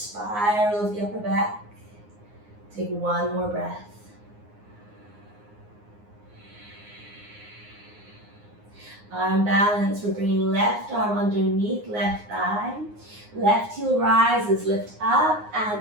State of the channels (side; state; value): left; late; 9.6 ms